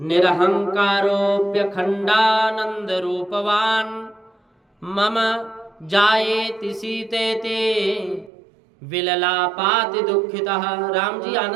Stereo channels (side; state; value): left; drops out; at 8.3 s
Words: रूपवान मम जायेति सीतेति विललापाति दुखितः। राम जी